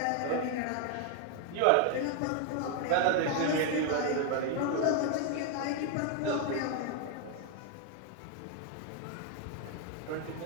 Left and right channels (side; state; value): both; different; correlation 0.00